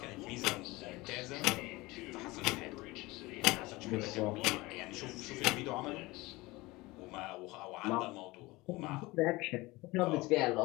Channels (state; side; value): quieter; right; 21.6 dB